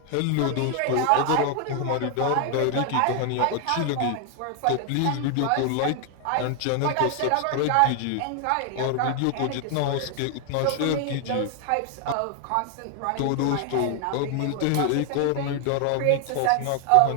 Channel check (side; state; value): both; different; correlation 0.00